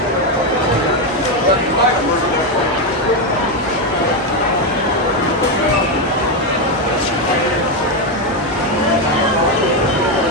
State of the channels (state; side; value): normal; both; correlation 0.07